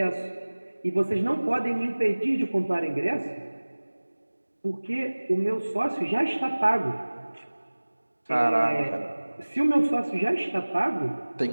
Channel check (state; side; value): inverted; both; correlation -1.00